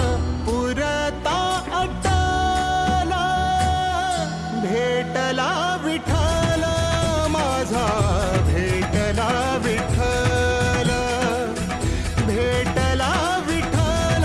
पुरता अटला, भेटला विठ्ठल माझा, भेटला विठ्ठल, भेटला विठ्ठल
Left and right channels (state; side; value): identical; both; correlation 1.00